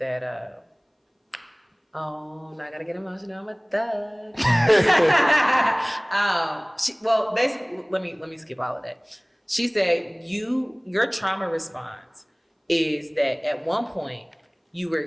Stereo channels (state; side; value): identical; both; correlation 1.00